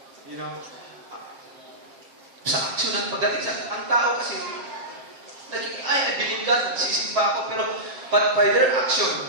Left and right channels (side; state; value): left; late; 7.6 ms